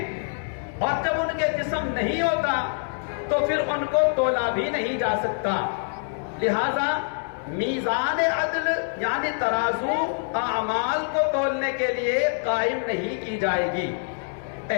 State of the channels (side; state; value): right; silent; digital silence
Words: اور جب ان کے جسم نہیں ہوتا تو پھر ان کو تولا بھی نہیں جا سکتا، لہذا میزان عدل یعنی ترازو اعمال کو تولنے کے لیے قائم نہیں کی جائے گی۔